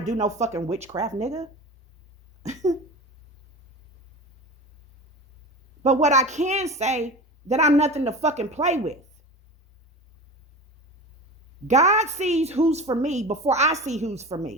no fucking witchcraft, nigga. But what I can say, that I'm nothing to fucking play with. God sees who's for me before I see who's for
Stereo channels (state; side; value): normal; both; correlation 0.31